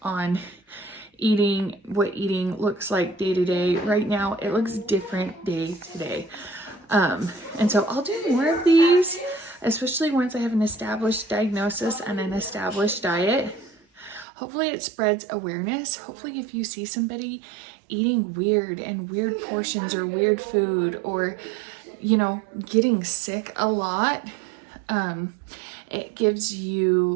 on eating, what eating looks like day to day. Right now, it looks different day to day. And so I'll do more of these, especially once I have an established diagnosis and an established diet. Hopefully it spreads awareness. Hopefully if you see somebody eating weird portions or weird food, or, you know, getting sick a lot, it gives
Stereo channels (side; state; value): left; drops out; at 14.2 s